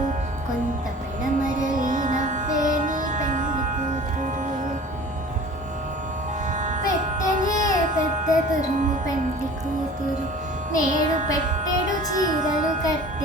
కొంత పెడమరలి నవ్వే నీ పెండ్లి కూతురు. పెట్టెనే పెద్ద తురుము పెండ్లి కూతురు, నేడు పెట్టెడు చీరలు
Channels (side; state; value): both; normal; correlation 0.43